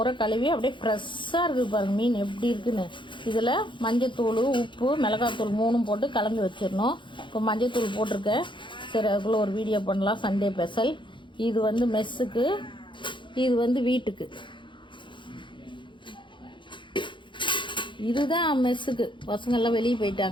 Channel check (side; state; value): right; late; 0.23 ms